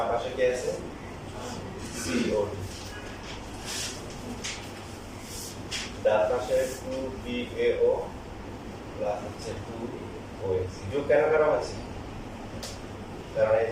পাশে কি আছে COD ডান পাশে 2BAO প্লাস হচ্ছে 2OAC যোগ কেন করা হচ্ছে কারণ এই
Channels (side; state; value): both; identical; correlation 1.00